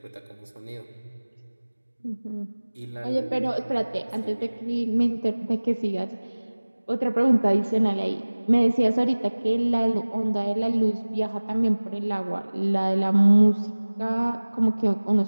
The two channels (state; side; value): inverted; both; correlation -1.00